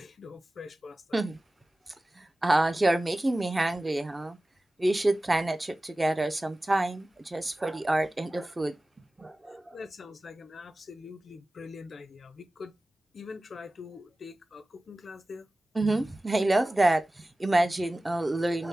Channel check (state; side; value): normal; both; correlation 0.97